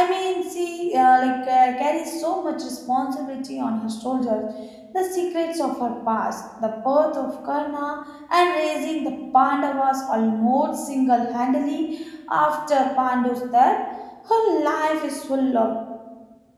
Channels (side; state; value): both; identical; correlation 1.00